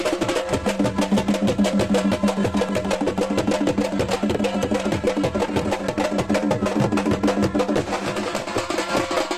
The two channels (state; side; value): identical; both; correlation 1.00